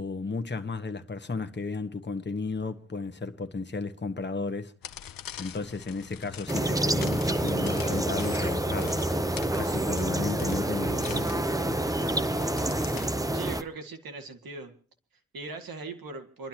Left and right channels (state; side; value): normal; both; correlation 0.66